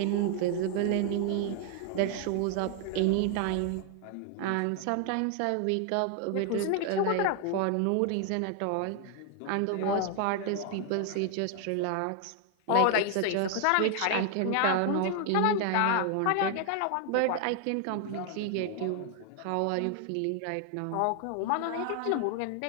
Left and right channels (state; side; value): different; both; correlation 0.00